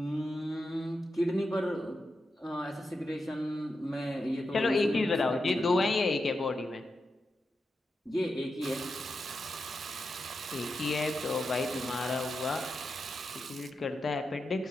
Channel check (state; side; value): normal; both; correlation 0.88